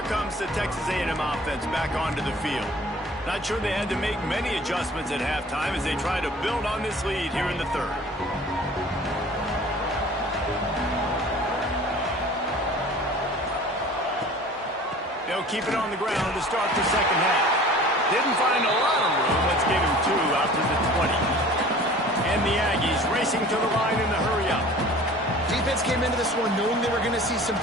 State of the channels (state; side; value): normal; both; correlation 0.45